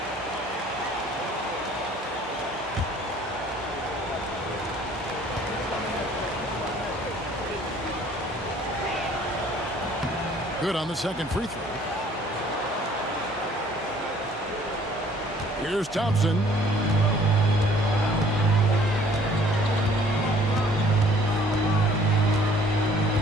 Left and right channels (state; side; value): noise; right; hum, 23 dB below the sound